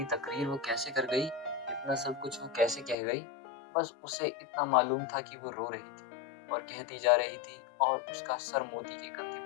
तकरीर वो कैसे कर गई? इतना सब कुछ वो कैसे कह गई? बस उसे इतना मालूम था कि वो रो रही थी और कहती जा रही थी और उसका सर मोती के कंधे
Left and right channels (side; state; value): right; drops out; at 3.0 s